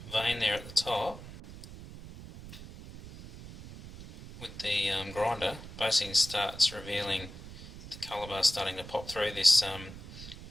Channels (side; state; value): right; noise; rumble, 14 dB below the sound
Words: vein there at the top with the grinder, basically starts revealing the colour bar starting to pop through this